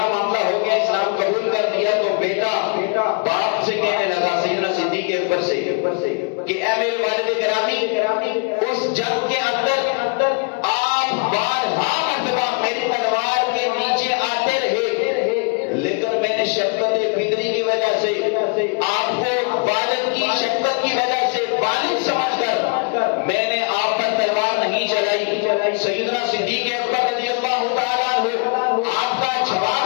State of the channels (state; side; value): quieter; right; 36.5 dB